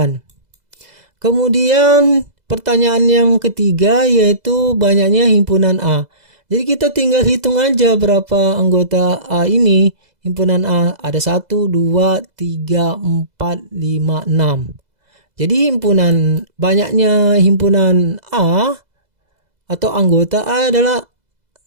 Kemudian pertanyaan yang ketiga yaitu banyaknya himpunan A. Jadi kita tinggal hitung aja berapa anggota A ini. Himpunan A ada 1, 2, 3, 4, 5, 6. Jadi banyaknya himpunan A atau anggota A adalah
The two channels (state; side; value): late; left; 2.0 ms